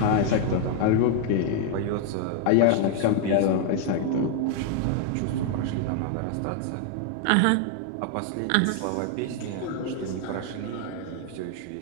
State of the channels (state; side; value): different; both; correlation 0.00